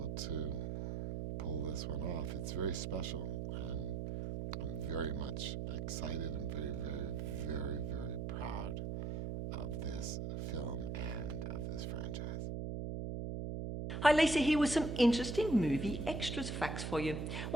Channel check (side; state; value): right; noise; hum, 3 dB below the sound